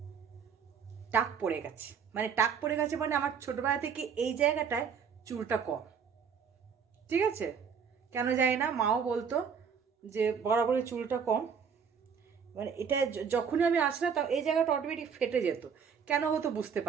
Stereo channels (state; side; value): quieter; left; 6.8 dB